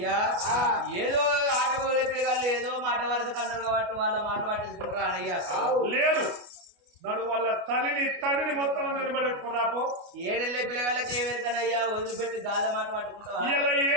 ఏదో ఆట మొదలే పిల్లగాళ్ళు ఏదో మాట వరస కన్నారు కాబట్టి వాళ్ళ మాట పట్టించుకుంటారా అయ్యా లేదు నడు వాళ్ళ తల్లిని తండ్రిని మొత్తం నిలబడి పెట్టుకుని రాపో ఏడెళ్ళే పిల్లగాళ్ళకి ఏమెరుకనయ్యా వదిలిపెట్టి గాళ్ళ మాట పట్టుకుంటావా ఇలా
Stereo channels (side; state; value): left; late; 29 ms